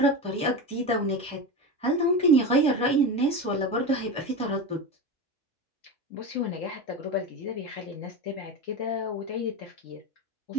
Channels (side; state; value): both; normal; correlation 0.22